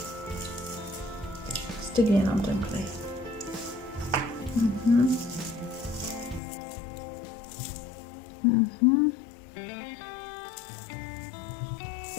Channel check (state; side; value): drops out; right; at 6.4 s